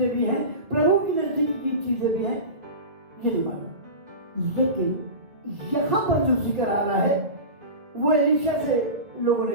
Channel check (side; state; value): left; late; 2.0 ms